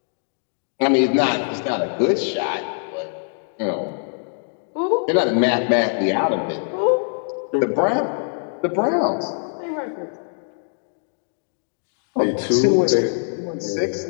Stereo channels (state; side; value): silent; right; 64 dB below the other